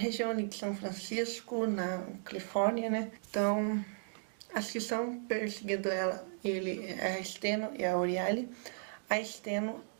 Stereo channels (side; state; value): left; silent; digital silence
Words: ali de São Francisco, na Califórnia, né? Então as que estão perseguindo ele é a Steno e a Euryale. A Steno,